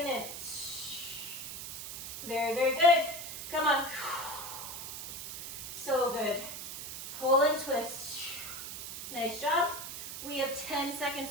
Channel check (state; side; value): noise; right; hiss, 8 dB below the sound